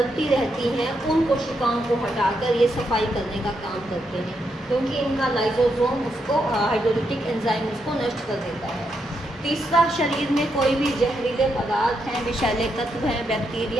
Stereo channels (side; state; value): both; normal; correlation 0.81